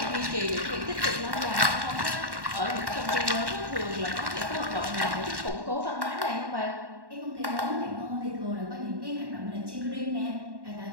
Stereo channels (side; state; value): left; late; 1.1 ms